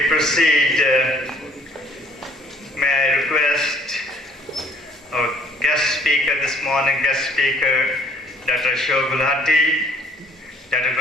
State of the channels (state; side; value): normal; both; correlation 0.58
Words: proceed, may I request our guest speaker this morning, Dr. Ashok Gulati, Dr.